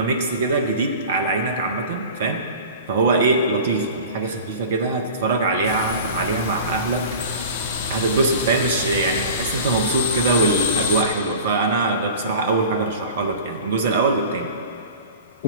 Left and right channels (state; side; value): inverted; both; correlation -0.38